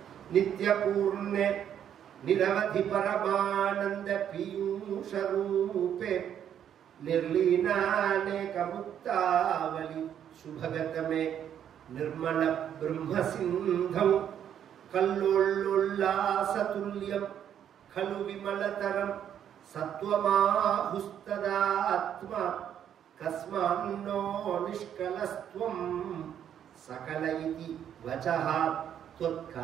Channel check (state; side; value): quieter; left; 9.5 dB